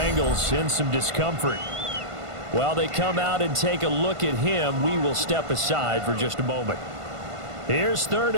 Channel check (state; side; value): late; left; 1.5 ms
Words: in some discomfort. While they come out and take a look at him, we will step aside for just a moment. Here's 3rd